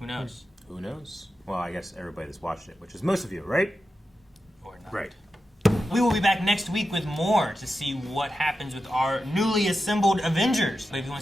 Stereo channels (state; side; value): normal; both; correlation 0.91